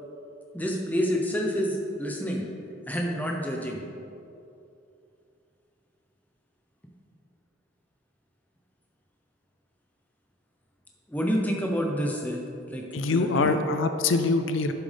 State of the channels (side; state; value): both; normal; correlation 0.52